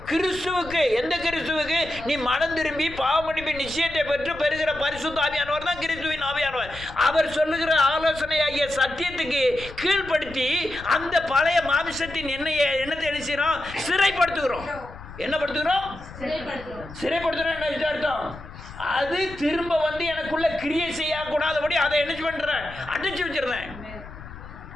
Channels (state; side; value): noise; left; rumble, 15 dB below the sound